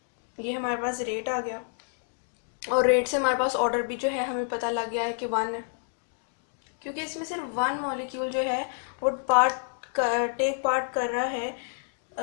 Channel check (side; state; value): right; silent; digital silence